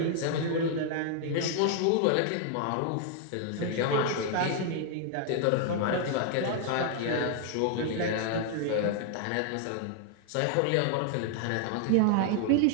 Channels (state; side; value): different; both; correlation 0.00